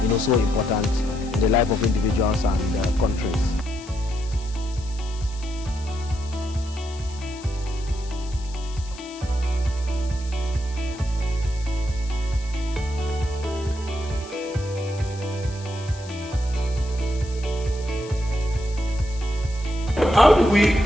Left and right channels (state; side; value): noise; left; hiss, 18 dB below the sound